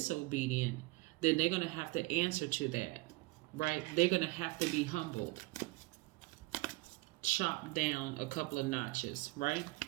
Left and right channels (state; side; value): quieter; left; 22.4 dB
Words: then they're going to have to answer to that, right? They're going to have to be humbled, chopped down a couple of notches, right?